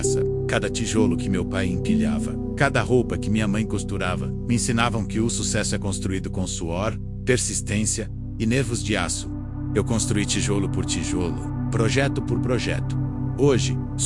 Cada tijolo que meu pai empilhava, cada roupa que minha mãe costurava, me ensinavam que o sucesso é construído com suor, persistência e nervos de aço. Eu construí tijolo por tijolo, projeto por projeto. Hoje,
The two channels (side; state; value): both; identical; correlation 1.00